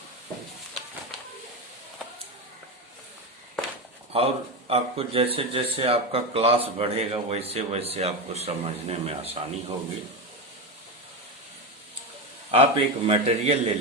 और आपको जैसे जैसे आपका क्लास बढ़ेगा वैसे वैसे आपको समझने में आसानी होगी। आप एक मटेरियल ले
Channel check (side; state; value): both; normal; correlation 0.15